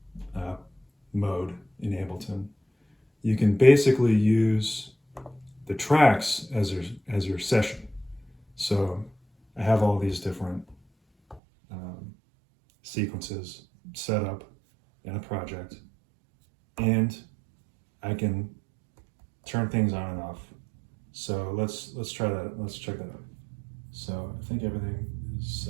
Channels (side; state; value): left; drops out; at 11.4 s